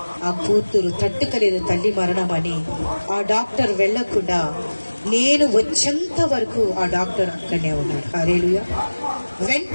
ఆ కూతురు తట్టుకలేదు తల్లి మరణం అని. ఆ డాక్టర్ వెళ్ళకుండా నేను వచ్చేంత వరకు ఆ డాక్టర్ అక్కడనే ఉన్నాడు. హల్లెలూయా.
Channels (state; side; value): inverted; both; correlation -1.00